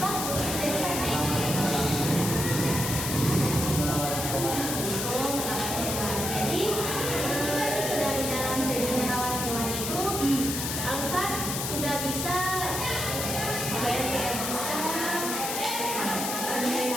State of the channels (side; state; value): left; noise; hiss, 3 dB below the sound